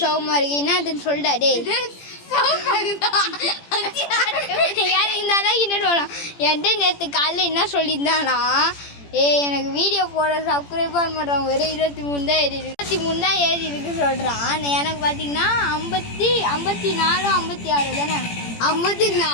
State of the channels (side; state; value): right; late; 17 ms